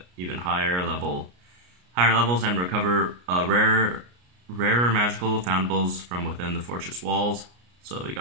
even higher levels, and recover rarer magical foundables from within the fortress walls. So you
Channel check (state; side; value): late; left; 33 ms